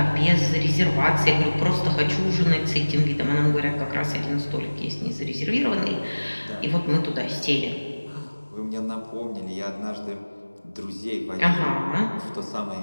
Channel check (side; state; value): both; inverted; correlation -1.00